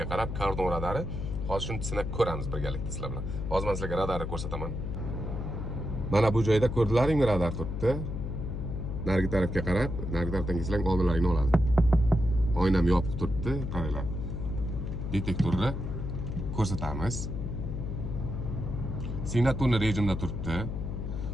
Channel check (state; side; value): noise; left; hum, 4 dB below the sound